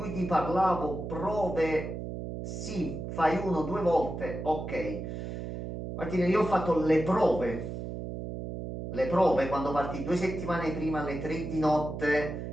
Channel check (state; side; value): noise; right; hum, 6 dB below the sound